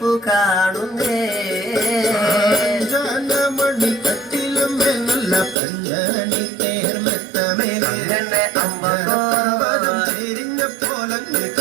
കാണുന്നേ മണി കട്ടിലുമേ നല്ല പഞ്ഞാണി തേർമത്തമേ അമ്പതും ചെരിഞ്ഞ പോലങ്ങ്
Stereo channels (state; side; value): drops out; left; at 5.6 s